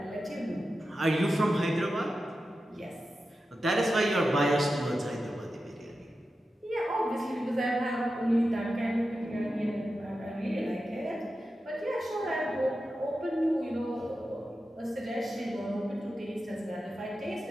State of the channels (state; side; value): normal; both; correlation 0.91